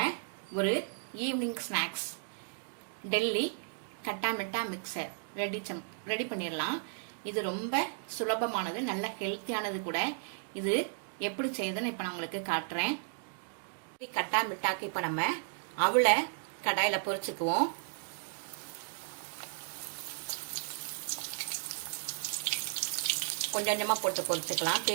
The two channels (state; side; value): silent; left; digital silence